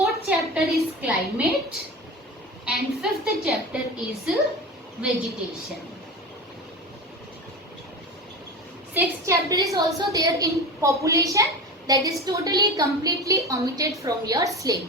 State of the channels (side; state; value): both; normal; correlation 0.29